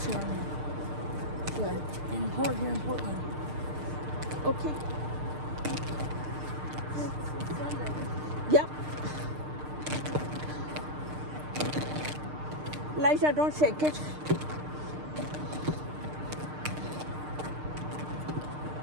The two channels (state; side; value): late; left; 6.6 ms